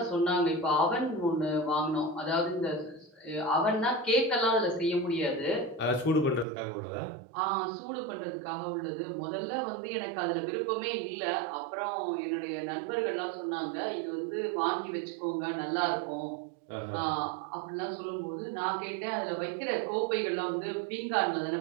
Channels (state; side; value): drops out; left; at 6.5 s